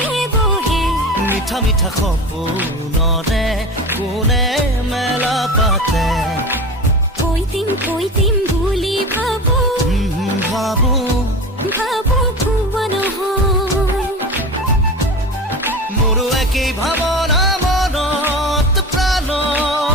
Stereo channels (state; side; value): normal; both; correlation 0.31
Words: বহে মিঠা মিঠা সপোনৰে কোনে মেলা পাতে কৈ দিম বুলি ভাবো ভাবো ভুৱা নহয় মোৰো একেই ভাৱনা মনত প্ৰাণ